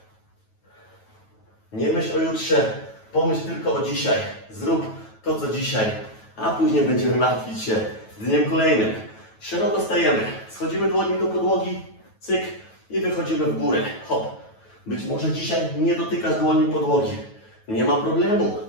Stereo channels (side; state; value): right; late; 9.2 ms